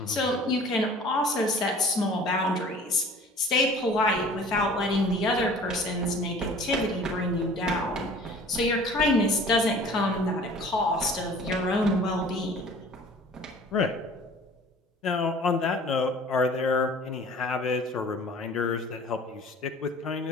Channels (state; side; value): normal; both; correlation 0.47